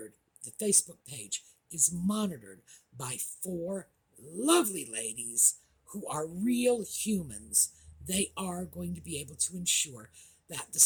the Facebook page is monitored by 4 lovely ladies who are real humans, they are going to be able to ensure that the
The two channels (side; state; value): both; identical; correlation 1.00